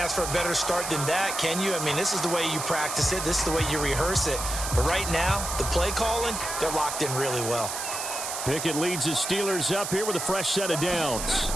for a better start than that, can you? I mean, this is the way you practice it. This is the way you rehearse it. But right now, the play calling, they're locked in really well. Pickett leads his Steelers up here with a fresh set of downs.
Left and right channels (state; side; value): noise; right; hiss, 5 dB below the sound